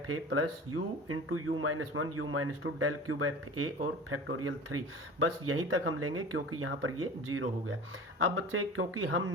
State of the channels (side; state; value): both; normal; correlation 0.37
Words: A plus U into U minus 1 U minus 2 del cube F A और factorial 3। बस यहीं तक हम लेंगे क्योंकि यहाँ पर ये 0 हो गया। अब बच्चे, क्योंकि हम